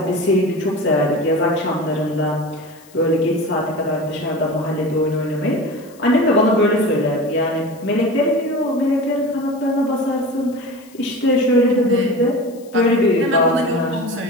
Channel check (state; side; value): noise; left; hiss, 26 dB below the sound